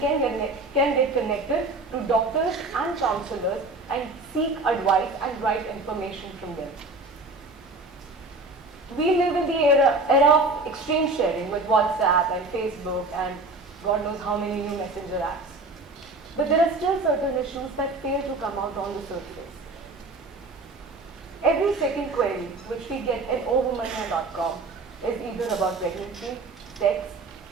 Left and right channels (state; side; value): quieter; left; 3.1 dB